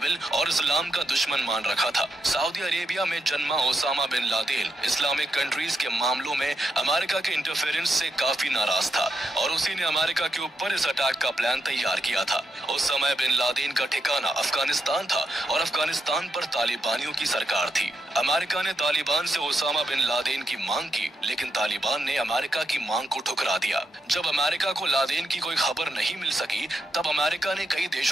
और इस्लाम का दुश्मन मान रखा था। सऊदी अरेबिया में जन्मा Osama bin Laden Islamic countries के मामलों में अमेरिका के इंटरफेरेंस से काफी नाराज था और उसी ने अमेरिका के ऊपर इस अटैक का प्लान तैयार किया था। उस समय बिन लादेन का ठिकाना अफगानिस्तान था और अफगानिस्तान पर तालिबानियों की सरकार थी। अमेरिका ने तालिबान से ओसामा बिन लादेन की मांग की, लेकिन तालिबान ने अमेरिका की मांग को ठुकरा दिया। जब अमेरिका को लादेन की कोई खबर नहीं मिल सकी तब अमेरिका ने कई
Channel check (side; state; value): both; normal; correlation 0.82